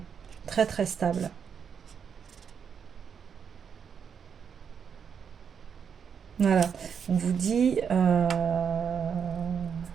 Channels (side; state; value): left; quieter; 7.0 dB